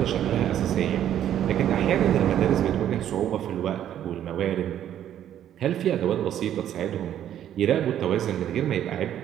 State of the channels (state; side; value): quieter; left; 10.8 dB